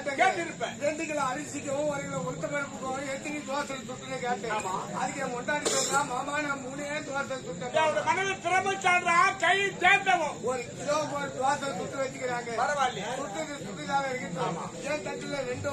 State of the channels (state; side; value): identical; both; correlation 1.00